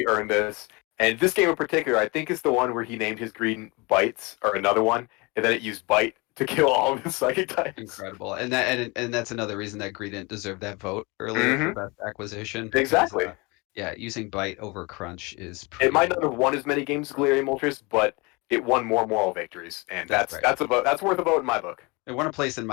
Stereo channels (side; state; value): right; quieter; 26.8 dB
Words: earned this. And this game in particular, I think is the one where he named his green Bites, or another one, and then it used Bite to kill all of his psychic types. Incredible, and that's another reason that Greed didn't deserve that vote earlier for best acquisition. Because, Exactly. yeah, using Bite over Crunch is pretty. It might not have won as many games as Galarian Moltres, but it won more moral victories, and That's right. that's worth a vote in my book. It won a place in